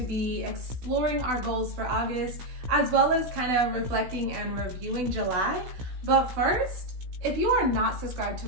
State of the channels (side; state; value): left; late; 16 ms